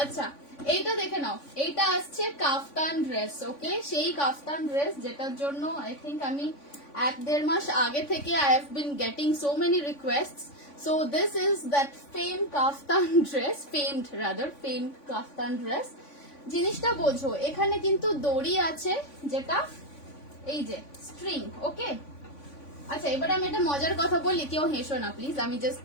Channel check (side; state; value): right; late; 3.5 ms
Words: এইটা দেখে নাও, এইটা আসছে কাফতান ড্রেস, ওকে, সেই কাফতান ড্রেস যেটার জন্য আই থিঙ্ক আমি 1-1.5 মাস আগে থেকে I have been getting so many রিকোয়েস্টস। So this is that famed kaftan dress, famed kaftan dress. জিনিসটা বোঝো, এখানে কিন্তু দড়ি আছে যেটা এই যে স্ট্রিং, ওকে। আচ্ছা, এবার আমি একটা মজার কথা বলি, কেউ হেসো না প্লিজ, আমি জাস্ট